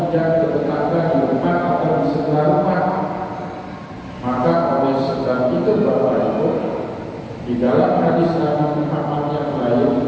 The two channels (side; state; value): both; identical; correlation 1.00